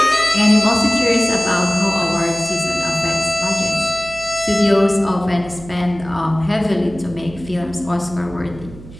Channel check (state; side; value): noise; right; hum, 17 dB below the sound